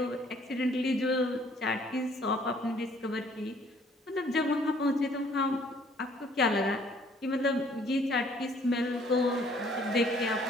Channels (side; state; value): both; normal; correlation 0.60